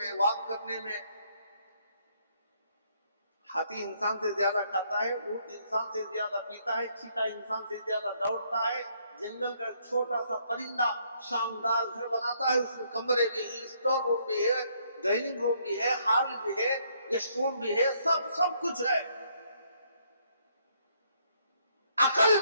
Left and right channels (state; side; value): inverted; both; correlation -0.69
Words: वॉक करने में हाथी इंसान से ज्यादा खाता है, ऊंट इंसान से ज्यादा पीता है, चीता इंसान से ज्यादा दौड़ता है। जंगल का छोटा सा परिंदा शानदार घर बनाता है, उसमें कमरे भी है, स्टोर रूम भी है, डाइनिंग रूम भी है, हॉल भी है, गेस्ट रूम भी है, सब कुछ है। अकल